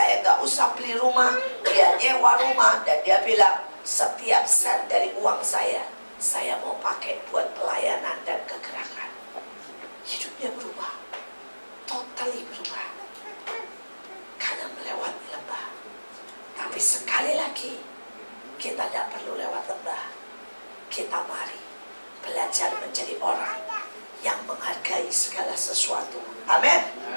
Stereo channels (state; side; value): inverted; both; correlation -1.00